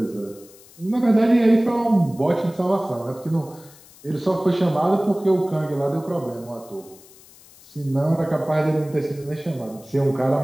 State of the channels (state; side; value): noise; left; hiss, 24 dB below the sound